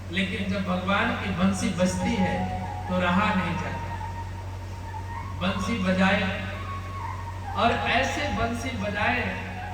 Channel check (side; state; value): both; identical; correlation 1.00